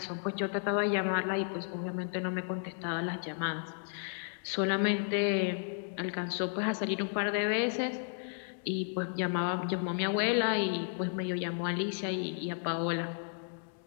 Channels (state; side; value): silent; right; digital silence